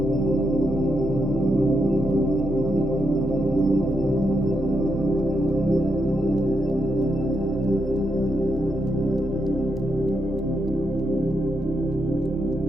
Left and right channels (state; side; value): normal; both; correlation 0.82